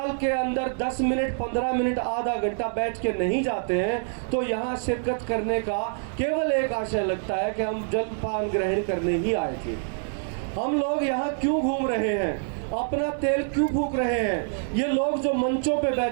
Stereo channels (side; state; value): left; silent; 61 dB below the other